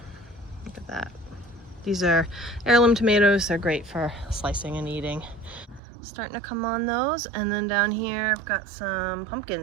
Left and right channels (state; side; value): drops out; left; at 5.8 s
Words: Look at that. These are heirloom tomatoes. They're great for slicing and eating. Starting to come on those. And then down here I've got some